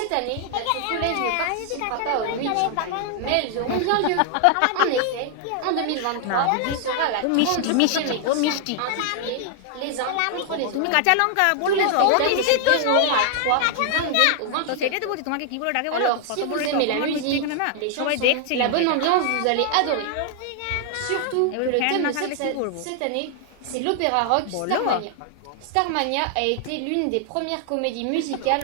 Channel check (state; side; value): different; both; correlation 0.00